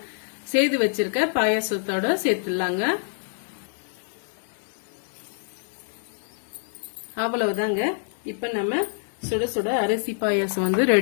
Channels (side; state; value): right; silent; 60 dB below the other